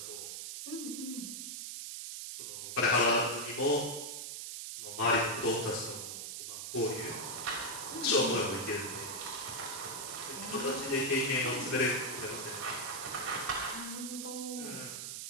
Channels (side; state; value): right; noise; hiss, 6 dB below the sound